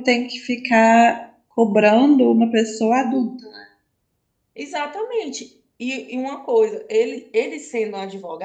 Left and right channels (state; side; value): identical; both; correlation 1.00